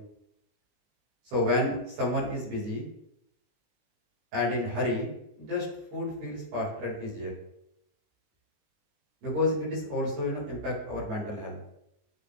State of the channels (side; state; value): left; late; 20 ms